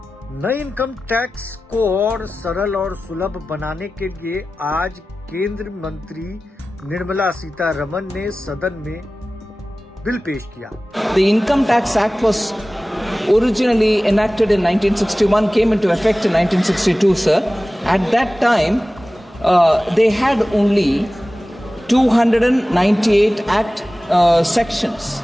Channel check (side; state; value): both; normal; correlation 0.96